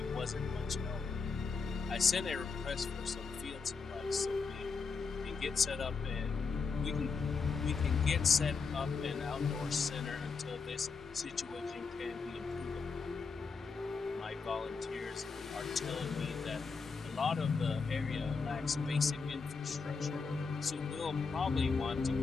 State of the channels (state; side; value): quieter; right; 4.9 dB